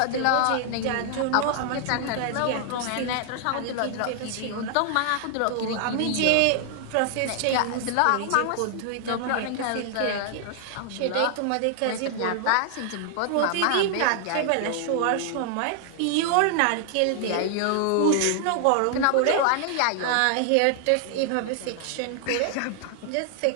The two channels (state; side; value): different; both; correlation 0.00